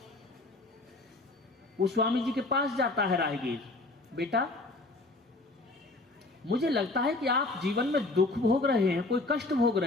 वो स्वामी जी के पास जाता है राहगीर, बेटा मुझे लगता है कि आप जीवन में दुख भोग रहे हैं, कोई कष्ट भोग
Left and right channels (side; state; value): right; quieter; 3.0 dB